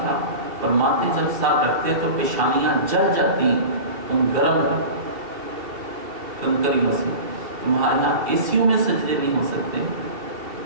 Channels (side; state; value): left; late; 2.7 ms